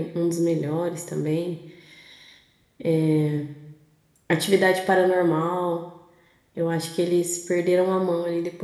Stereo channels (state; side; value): identical; both; correlation 1.00